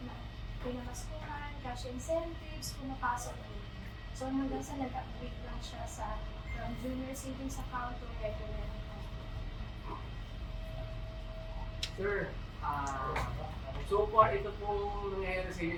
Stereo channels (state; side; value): identical; both; correlation 1.00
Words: na pinamaskuhan, cash incentives, pumapasok po. So hanggang sa nag-upgrade lang siya sa from junior savings account to regular account. Sir, so far ito pong nangyayari sa